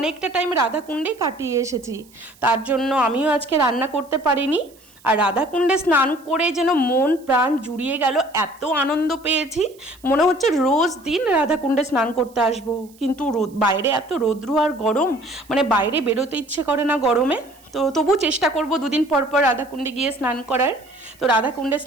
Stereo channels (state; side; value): noise; right; hiss, 28 dB below the sound